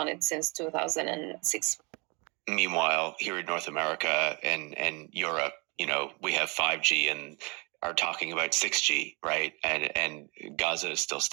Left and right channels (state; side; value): quieter; left; 29.8 dB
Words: it since 2006. Meanwhile, here in North America and Europe, we have 5G and are talking about 6G, right? And Gaza is still